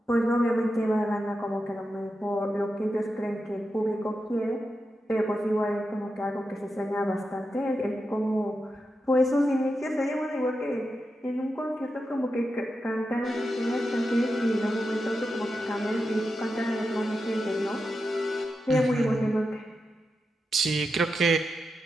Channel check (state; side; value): normal; both; correlation 0.88